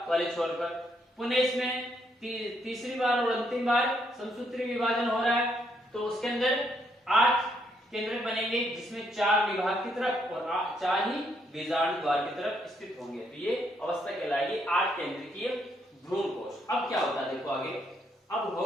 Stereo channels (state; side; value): normal; both; correlation 0.74